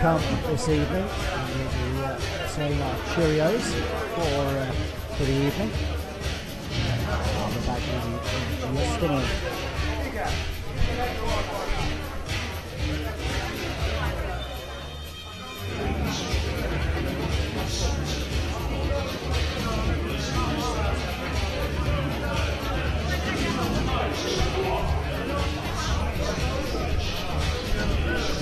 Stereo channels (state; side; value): identical; both; correlation 1.00